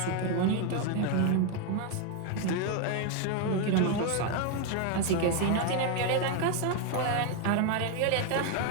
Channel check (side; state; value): both; different; correlation 0.01